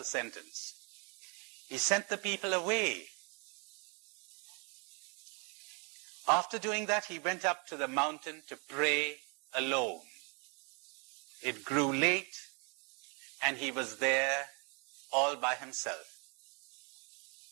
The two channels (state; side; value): quieter; left; 34.6 dB